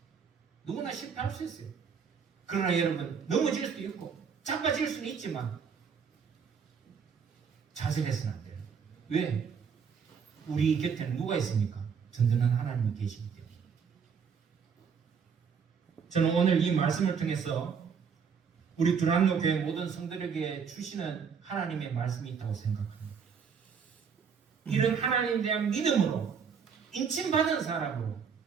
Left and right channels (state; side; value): quieter; left; 6.5 dB